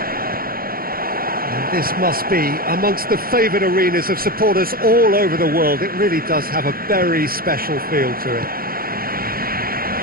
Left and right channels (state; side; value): late; left; 0.43 ms